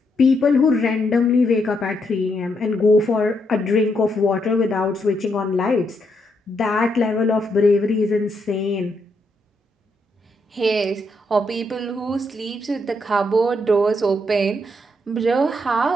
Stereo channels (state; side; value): normal; both; correlation 0.78